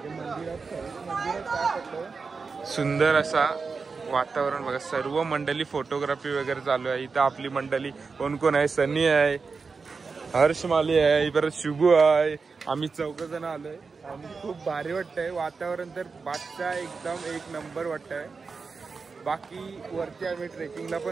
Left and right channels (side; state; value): left; quieter; 4.7 dB